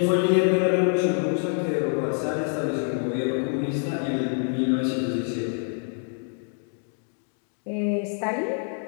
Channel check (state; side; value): silent; right; 55 dB below the other